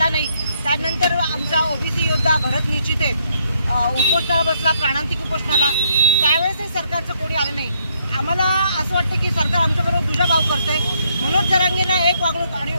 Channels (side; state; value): both; inverted; correlation -0.72